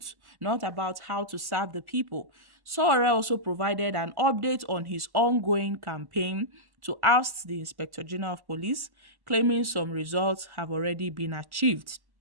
not about how to serve the people. Sowore also provided an update on his ongoing campaign to oust the Inspector General of Police, claiming some results have already been achieved.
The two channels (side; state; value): left; late; 1.1 ms